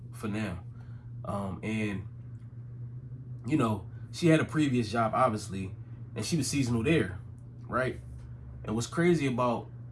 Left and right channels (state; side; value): identical; both; correlation 1.00